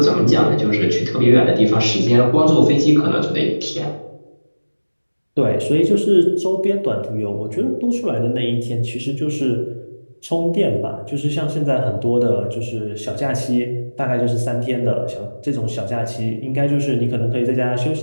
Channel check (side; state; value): both; inverted; correlation -1.00